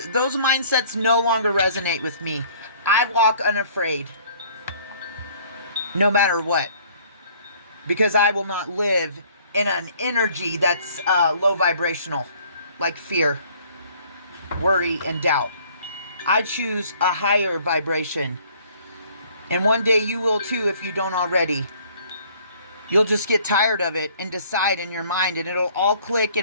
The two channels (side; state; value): both; inverted; correlation -0.57